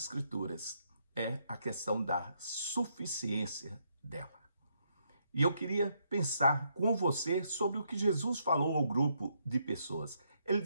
é a questão da suficiência dela. E eu queria pensar com você sobre o que Jesus falou ao grupo de pessoas. Ele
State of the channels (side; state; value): both; inverted; correlation -0.75